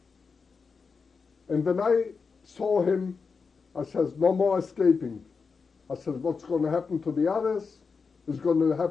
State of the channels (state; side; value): quieter; right; 5.1 dB